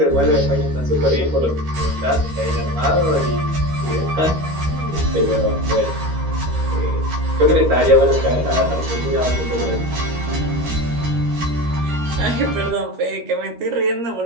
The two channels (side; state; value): left; late; 13 ms